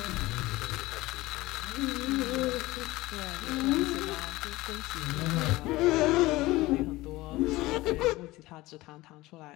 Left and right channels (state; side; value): quieter; right; 19.2 dB